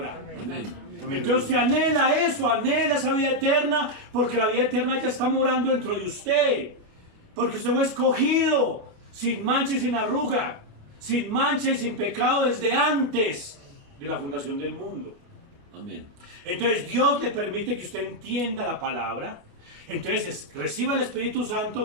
Amén. Entonces usted anhela eso, anhela esa vida eterna, porque la vida eterna ya está morando dentro de usted. Porque usted fue escogido, sin mancha y sin arruga, sin mancha y sin pecado desde antes de la fundación del mundo. Amén. Entonces Dios le permite que usted entienda la palabra. Entonces reciba el Espíritu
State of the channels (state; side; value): late; left; 29 ms